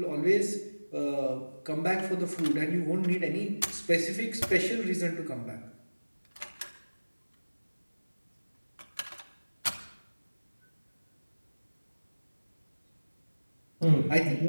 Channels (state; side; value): inverted; both; correlation -1.00